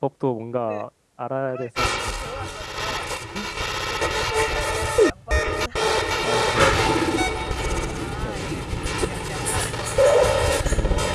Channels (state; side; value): identical; both; correlation 1.00